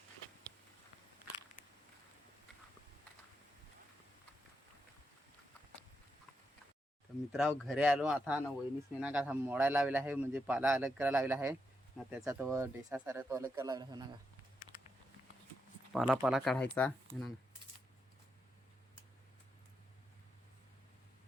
तर मित्रांनो घरी आलो आता ना वहिनीसने ना का मोडायला लावला आहे म्हणजे पाला अलग करायला लावला आहे ना त्याचा तो डेसा सारा तो अलग करायला लावला आहे ना पाला काढायचा ना.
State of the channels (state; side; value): normal; both; correlation 0.83